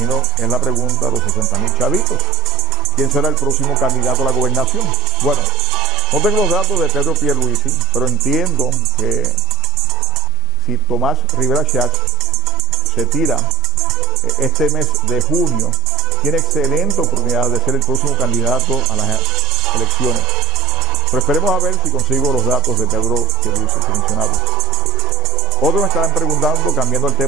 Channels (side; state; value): both; normal; correlation 0.60